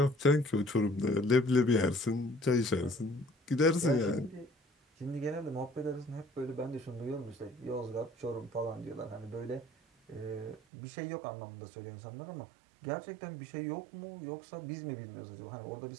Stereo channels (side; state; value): left; drops out; at 10.6 s